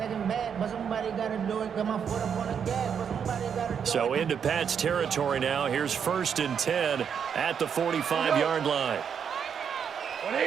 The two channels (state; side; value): quieter; left; 7.4 dB